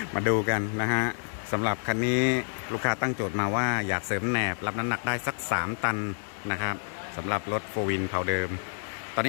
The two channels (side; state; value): right; silent; 59 dB below the other